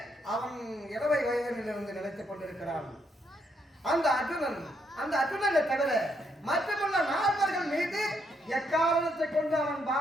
அவன் 20 வயதிலிருந்து நினைத்துக் கொண்டிருக்கிறான். அந்த அர்ஜுனனை தவிர மற்றமுள்ள 4 மீது எக்காரணத்தை கொண்டு அவன்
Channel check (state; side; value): normal; both; correlation 0.75